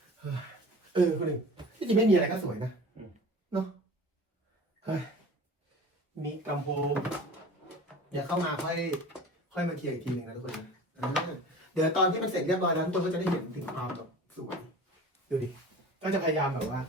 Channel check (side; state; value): both; normal; correlation 0.39